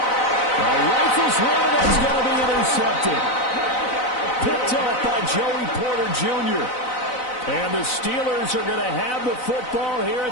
A rifle's one that's going to be intercepted. Picked off by Joey Porter Jr. And the Steelers are going to have the football here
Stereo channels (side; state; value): right; late; 4.0 ms